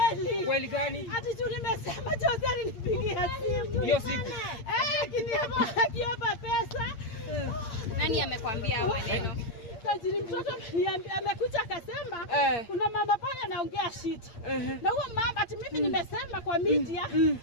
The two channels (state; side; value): late; right; 8.6 ms